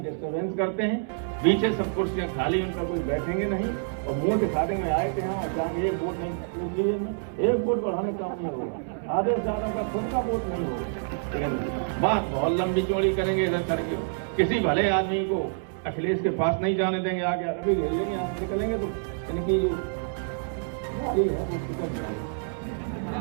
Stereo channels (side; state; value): left; silent; 60 dB below the other